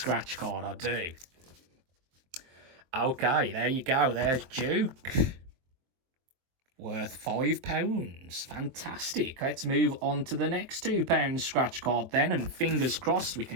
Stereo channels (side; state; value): left; late; 23 ms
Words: card, I do. Okay, there you go. There's Duke. Worth £5. Fantastic. Let's move on to the next £2 scratch card then. And fingers crossed we